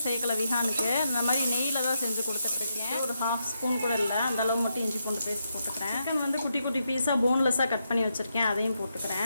சேர்க்கலை விஹானுக்கு. இந்த மாதிரி நெய்யில் தான் செஞ்சு கொடுத்துட்ருக்கேன். ஒரு 1/2 ஸ்பூன் கூட இல்லை, அந்தளவு மட்டும் இஞ்சி பூண்டு பேஸ்ட் போட்டுக்கிறேன். சிக்கன் வந்து குட்டி குட்டி பீஸாக போன்லெஸ்ஸாக கட் பண்ணி வச்சுருக்கேன், அதையும்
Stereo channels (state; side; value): inverted; both; correlation -0.82